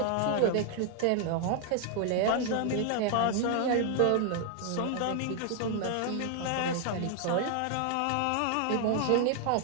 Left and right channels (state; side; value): different; both; correlation 0.00